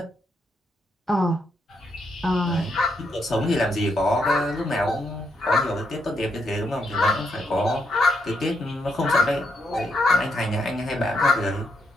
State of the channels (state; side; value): normal; both; correlation 0.78